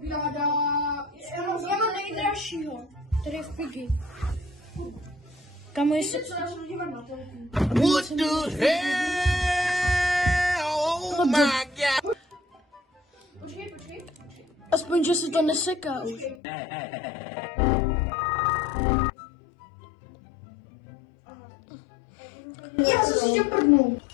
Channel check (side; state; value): right; drops out; at 16.4 s